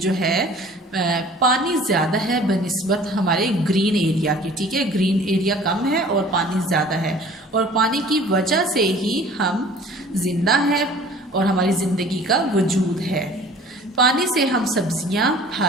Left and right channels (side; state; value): both; normal; correlation 0.48